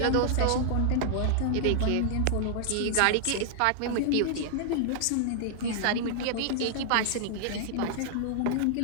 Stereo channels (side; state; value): both; different; correlation -0.01